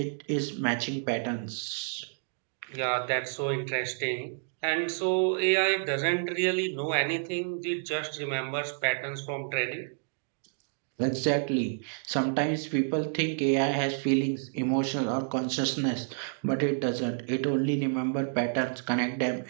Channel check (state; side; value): silent; left; digital silence